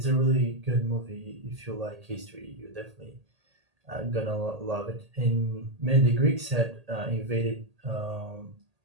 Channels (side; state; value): left; late; 1.8 ms